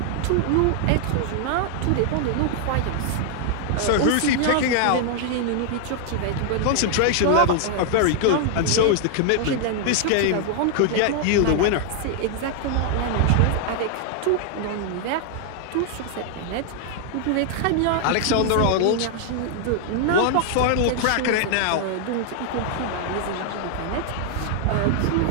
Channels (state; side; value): different; both; correlation 0.00